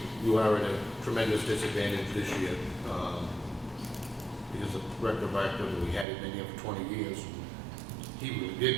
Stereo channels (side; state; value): left; drops out; at 6.1 s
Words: you are at a tremendous disadvantage this year because the director of activity, we had it been here for 20 years. He really